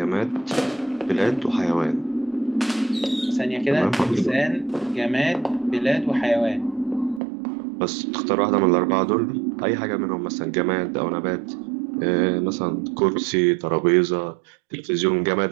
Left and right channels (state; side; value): drops out; left; at 7.2 s